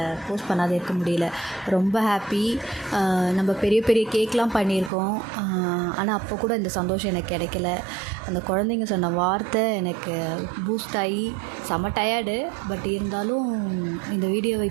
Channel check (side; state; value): left; drops out; at 4.9 s